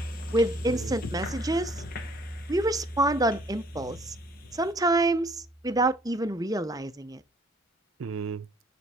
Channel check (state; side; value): normal; both; correlation 0.59